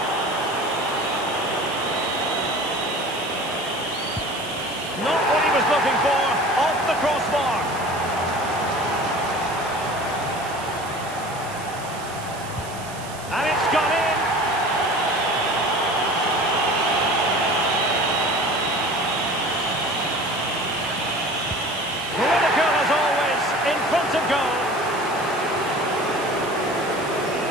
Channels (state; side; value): noise; right; hiss, 16 dB below the sound